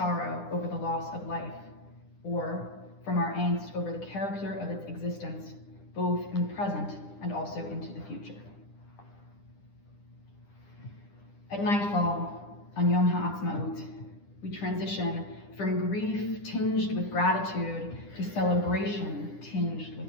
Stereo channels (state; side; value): late; right; 9.9 ms